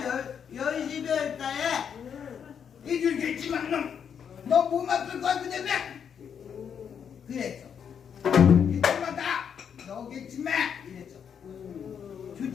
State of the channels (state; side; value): quieter; right; 7.6 dB